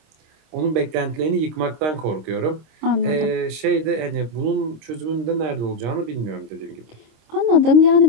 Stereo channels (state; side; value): late; left; 26 ms